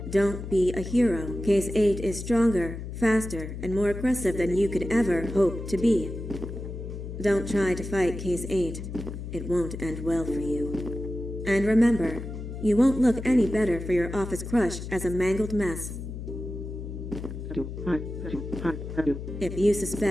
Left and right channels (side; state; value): left; noise; hum, 8 dB below the sound